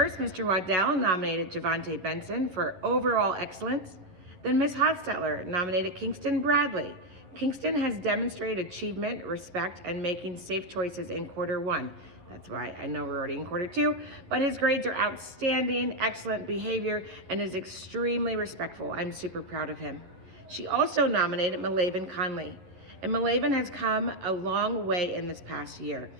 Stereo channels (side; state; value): left; late; 11 ms